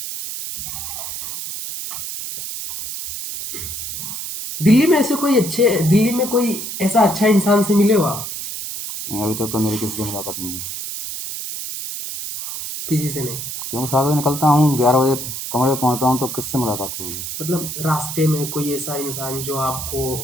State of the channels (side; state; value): right; noise; hiss, 6 dB below the sound